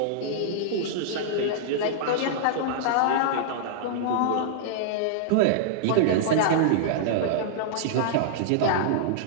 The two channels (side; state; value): both; different; correlation -0.02